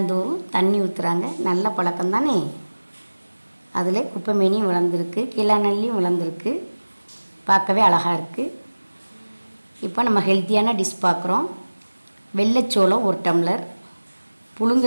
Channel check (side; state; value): both; inverted; correlation -1.00